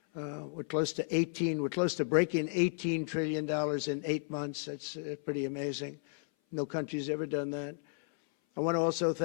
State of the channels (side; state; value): right; silent; 56 dB below the other